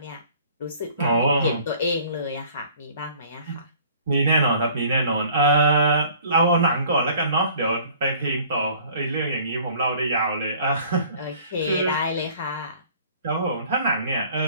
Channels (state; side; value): inverted; both; correlation -0.53